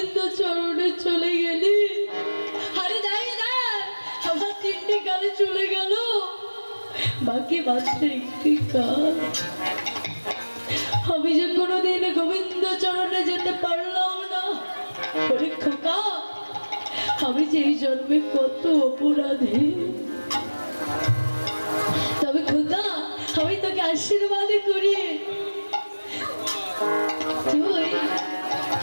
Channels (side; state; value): both; inverted; correlation -1.00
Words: চরণে চলে গেলি। আরে দেখ দেখ, আমার 3টি কালে চলে গেল, বাকি মাত্র 1টি কাল। আমি যে কোনোদিন গোবিন্দ চরণে যেতে পারলাম না। আরে খোকা, আমি যে এই জন্মে কত অপরাধী। তবে খোকা, আমি তোকে আশীর্বাদ করি,